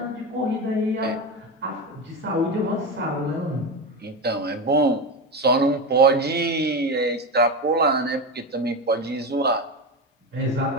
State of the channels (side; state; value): both; normal; correlation 0.18